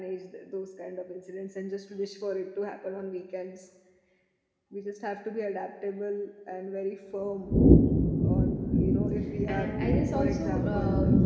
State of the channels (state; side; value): identical; both; correlation 1.00